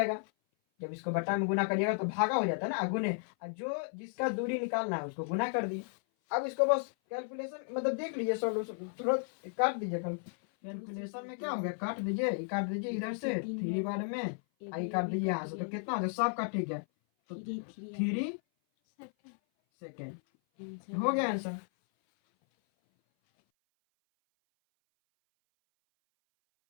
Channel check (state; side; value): silent; right; 55 dB below the other